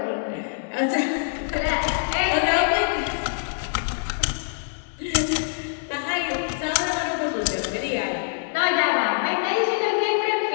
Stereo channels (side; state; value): right; silent; digital silence